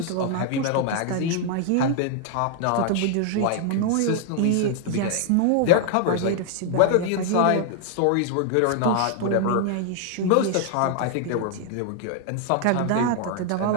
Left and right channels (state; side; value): different; both; correlation 0.00